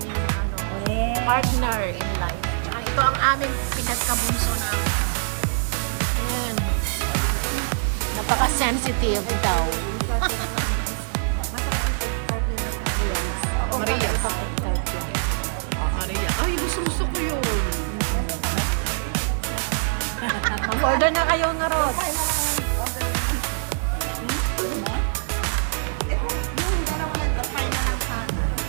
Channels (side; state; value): left; silent; digital silence